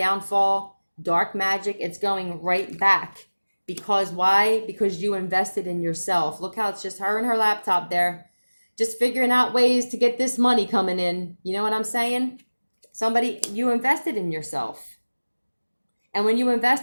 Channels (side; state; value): both; inverted; correlation -1.00